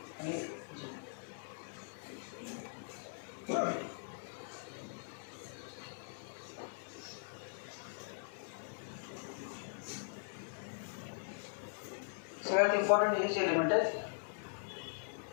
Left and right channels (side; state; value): right; silent; 51 dB below the other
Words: आणि सगळ्यात इम्पॉर्टंट हेच एलिमेंट आहेत.